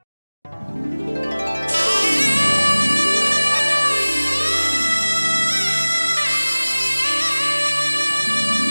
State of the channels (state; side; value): inverted; both; correlation -1.00